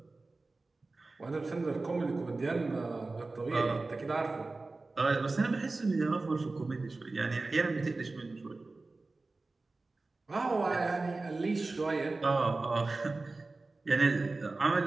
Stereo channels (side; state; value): left; quieter; 3.4 dB